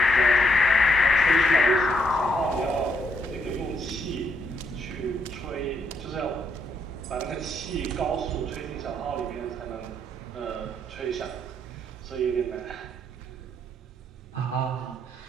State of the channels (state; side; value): normal; both; correlation 0.73